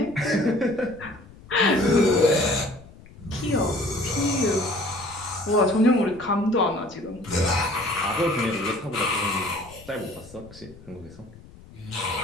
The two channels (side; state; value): left; noise; rumble, 21 dB below the sound